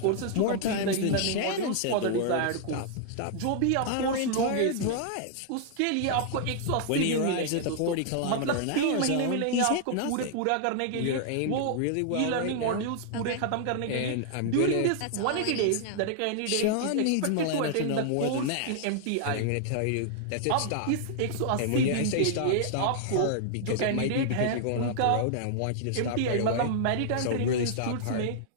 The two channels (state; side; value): different; both; correlation -0.01